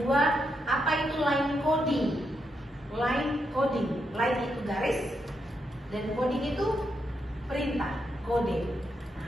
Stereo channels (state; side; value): normal; both; correlation 0.82